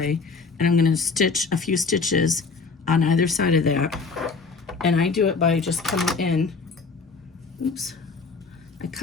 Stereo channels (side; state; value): right; quieter; 4.6 dB